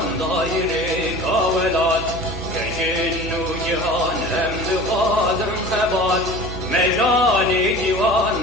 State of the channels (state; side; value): noise; right; hum, 9 dB below the sound